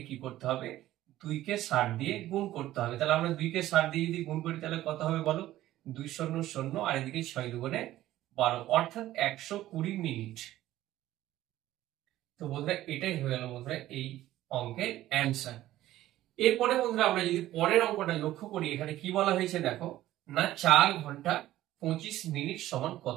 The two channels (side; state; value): left; quieter; 14.6 dB